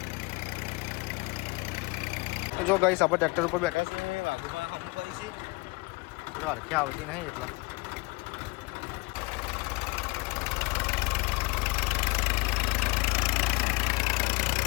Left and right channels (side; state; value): right; quieter; 25.9 dB